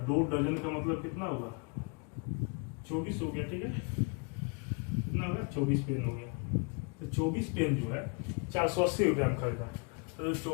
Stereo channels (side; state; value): right; quieter; 35.0 dB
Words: 2 दर्जन का मतलब कितना हुआ 24 हो गया, ठीक है। कितना होगा 24 पेन हो गया। तो 24 पेन जो है 480 रुपया में खरीदा। तो जो